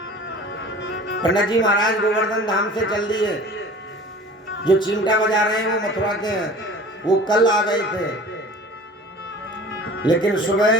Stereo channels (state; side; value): normal; both; correlation 0.42